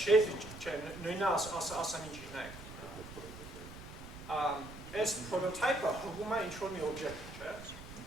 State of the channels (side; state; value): right; noise; rumble, 14 dB below the sound